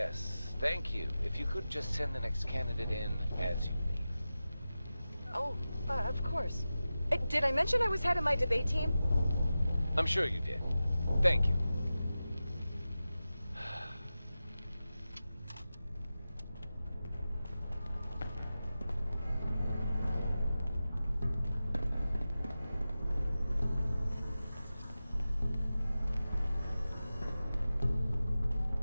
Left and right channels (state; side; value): inverted; both; correlation -0.94